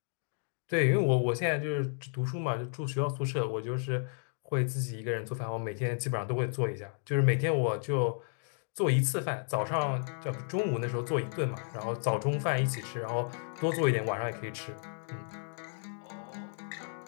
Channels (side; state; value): right; silent; 56 dB below the other